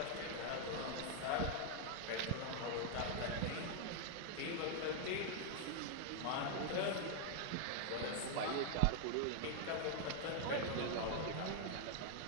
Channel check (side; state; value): both; different; correlation 0.00